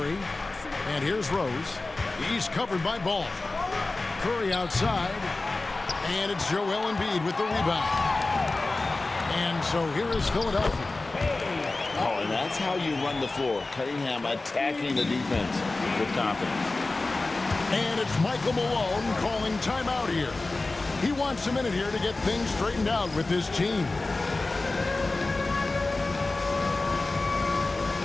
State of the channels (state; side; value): quieter; right; 3.3 dB